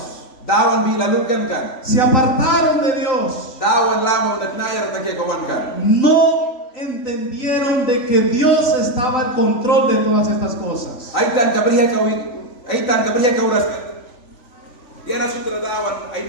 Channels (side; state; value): right; late; 3.5 ms